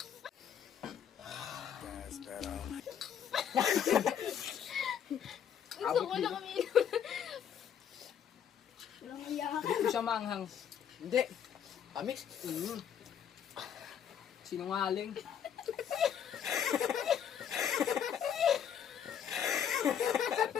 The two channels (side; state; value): right; quieter; 8.7 dB